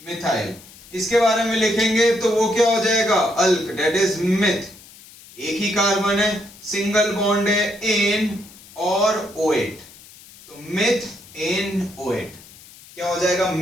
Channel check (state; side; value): noise; left; hiss, 21 dB below the sound